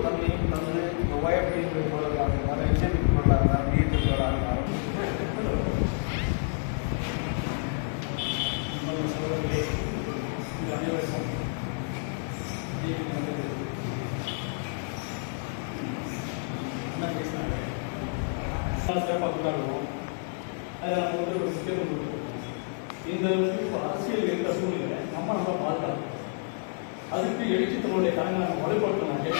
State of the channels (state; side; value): silent; right; 59 dB below the other